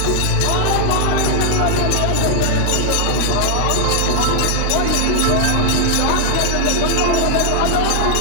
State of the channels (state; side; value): different; both; correlation -0.01